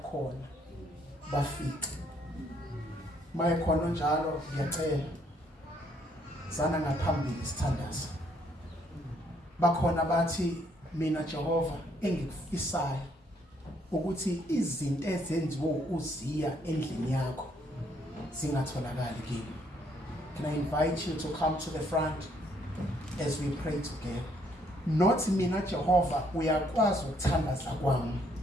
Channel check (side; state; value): both; normal; correlation 0.68